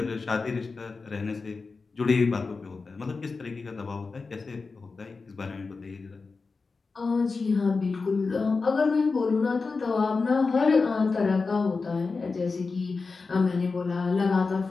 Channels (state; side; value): quieter; right; 4.3 dB